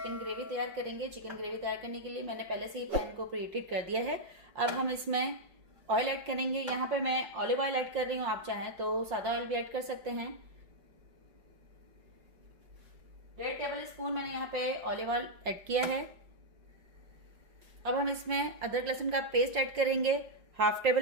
ग्रेवी तैयार करेंगे। चिकन ग्रेवी तैयार करने के लिए मैंने पहले से ही पैन को प्रीहीट कर दिया है। अब हम इसमें ऑयल ऐड करेंगे। यहाँ पे मैं ऑलिव ऑयल ऐड कर रही हूँ, आप चाहें तो सादा ऑयल भी ऐड कर सकते हैं। 1.5 टेबल स्पून मैंने यहाँ पे ऑलिव ऑयल ऐड किया है। अब हम इसमें अदरक लहसुन का पेस्ट ऐड करेंगे, 1/2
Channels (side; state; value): left; late; 5.6 ms